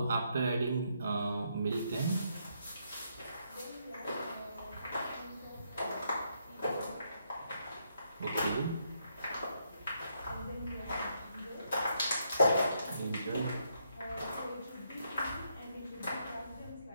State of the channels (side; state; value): both; inverted; correlation -0.76